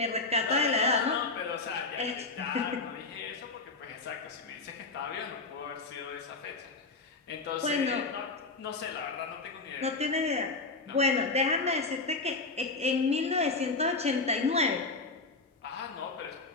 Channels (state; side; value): quieter; right; 3.6 dB